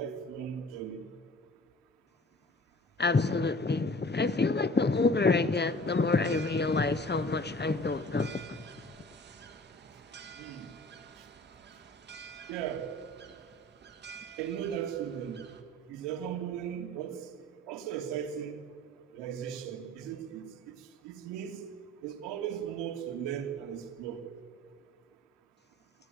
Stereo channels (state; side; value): normal; both; correlation 0.47